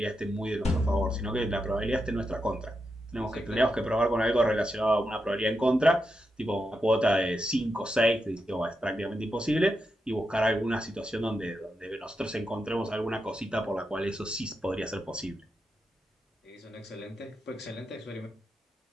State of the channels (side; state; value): both; normal; correlation 0.86